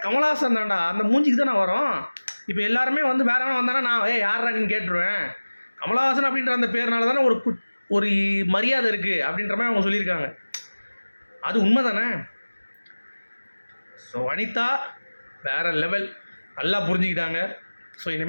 கமல்ஹாசன் தான்டா, அந்த மூஞ்சிக்கு தானே வரும். இப்போ எல்லாருமே வந்து வேற எவனா வந்தானா நான் யாரா நீன்னு கேட்டுருவேன். கமல்ஹாசன் அப்படின்ற அந்த பேர்னால தானே ஒரு மரியாதை இருக்குது அப்படின்ற மாதிரி அவங்க சொல்லியிருக்காங்க. அது உண்மை தானே? ஸோ வனிதா வேறு லெவல், நல்லா புரிஞ்சுக்கிட்டாங்க. ஸோ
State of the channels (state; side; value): inverted; both; correlation -1.00